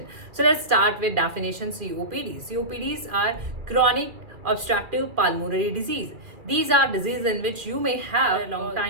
So let's start with definition COPD. COPDs are chronic obstructive pulmonary disease. These are diseases in which you may have a long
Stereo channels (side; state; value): left; late; 2.4 ms